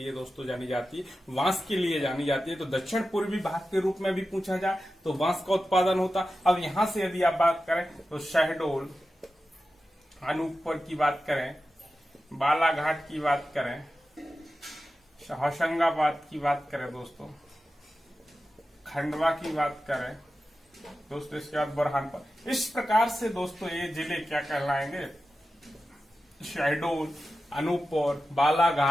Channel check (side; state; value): both; normal; correlation 0.93